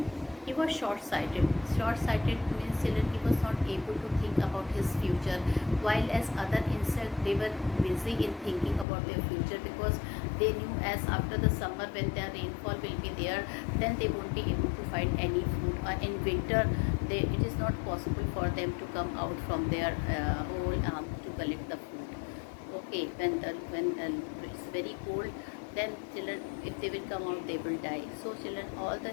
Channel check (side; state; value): right; drops out; at 8.8 s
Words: He was short-sighted. Short-sighted means children, he was not able to think about his future, while as other insects they were busy in thinking about their future because they knew as after the summer when the rainfall will be there, then they won't be able to find any food. Or in winter, it is not possible for them to come out from their hole to collect the food. Okay, when it's very cold, then children, if they will come out, they will die. So children, all the